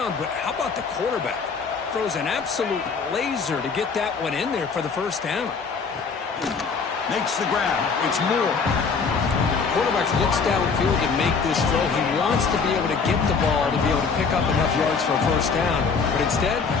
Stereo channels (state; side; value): quieter; right; 5.2 dB